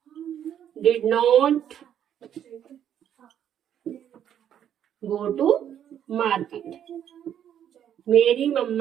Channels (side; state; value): left; quieter; 9.8 dB